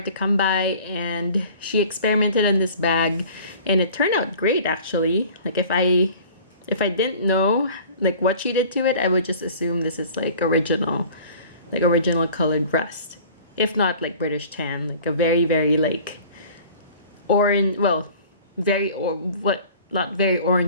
to come by, and she experimented on this bag and it turned out great actually. Like if I didn't know like what she did to it, I would just assume this is like original colored rust, if not like British tan, like a very like orange, well, not very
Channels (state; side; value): inverted; both; correlation -0.46